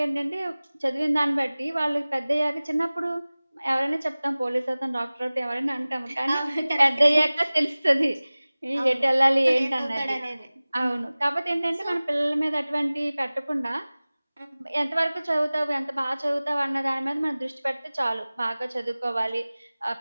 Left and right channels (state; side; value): inverted; both; correlation -0.99